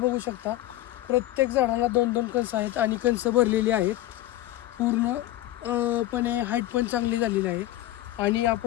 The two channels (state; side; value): quieter; right; 15.1 dB